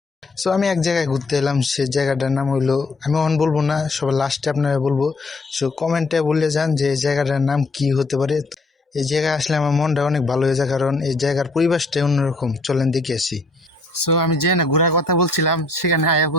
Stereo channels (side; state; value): right; quieter; 3.0 dB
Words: সো আমি এক জায়গায় ঘুরতে এলাম, সে জায়গাটার নাম হইলো, আমি অন বলবো না, সবার লাস্টে আপনারা বলবো। সো কমেন্টে বলে যান যে এই জায়গাটার নাম কি হতে পারে। এই জায়গায় আসলে আমার মনটা অনেক ভালো হয়ে যায়, কারণ এই জায়গার পরিবেশটাই অন্যরকম। চলেন দেখে আসি। সো আমি যে না ঘোরার কথা বলছিলাম, সেখানে আয়া